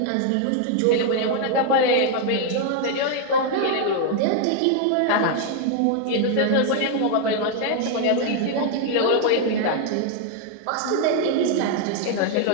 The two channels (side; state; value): both; different; correlation 0.00